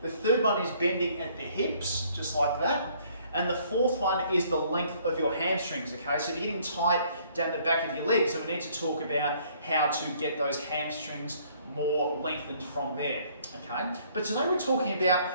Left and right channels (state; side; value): inverted; both; correlation -0.62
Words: The third one is bending at the hips, just like that. And the fourth one is the length of your hamstrings, okay? So if you're getting tight down the back of your legs, so we need to talk about how to get those hamstrings more lengthened from there, okay? But today we're talking